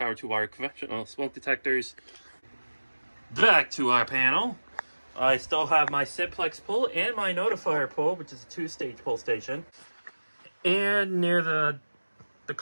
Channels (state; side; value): inverted; both; correlation -1.00